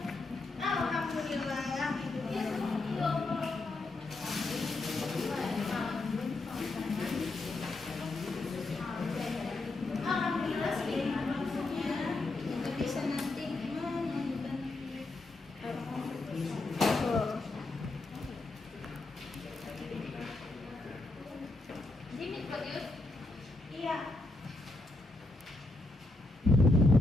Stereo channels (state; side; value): quieter; right; 3.1 dB